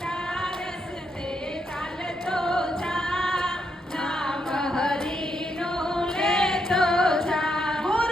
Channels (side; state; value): both; normal; correlation 0.79